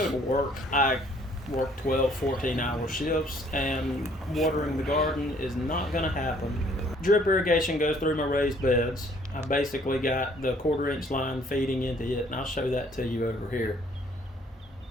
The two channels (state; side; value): normal; both; correlation 0.60